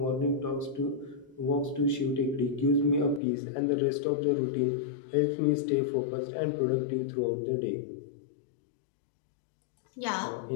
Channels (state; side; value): drops out; right; at 3.2 s